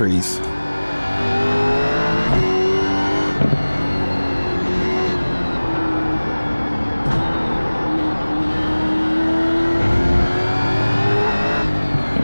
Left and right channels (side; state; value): both; inverted; correlation -1.00